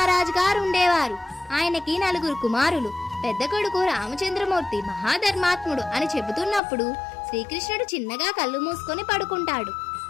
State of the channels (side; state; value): right; drops out; at 6.6 s